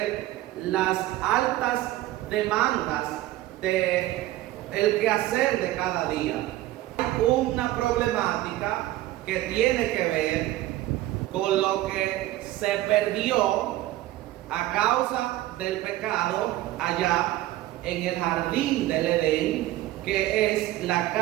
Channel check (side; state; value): left; quieter; 15.7 dB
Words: las altas demandas de el quehacer de cada día. Hay una problemática que tiene que ver con lo que se perdió a causa del pecado allá en el jardín del Edén, que es la